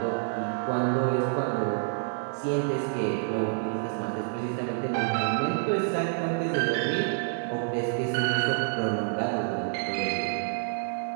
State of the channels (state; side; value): silent; left; digital silence